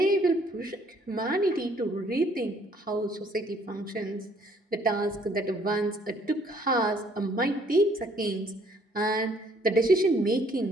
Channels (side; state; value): both; normal; correlation 0.62